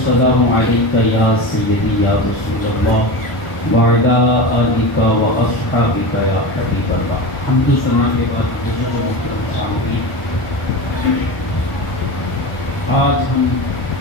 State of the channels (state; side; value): late; right; 1.0 ms